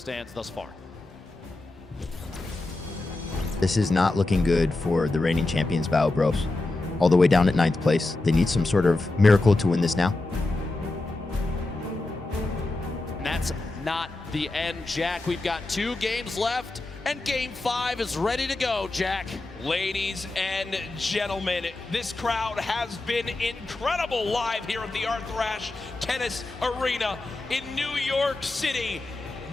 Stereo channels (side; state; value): right; quieter; 3.0 dB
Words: thus far. This is not looking good for the reigning champions, Bao Bros. All the way down at 9th place. They need some sort of miracle to win this now. And that's not the end, Jack. We've got 2 games left, and game 5 is ready to go, Jack. Ladies and gentlemen, this crowd has been incredible live here at the Arthrash Tennis Arena in New York City.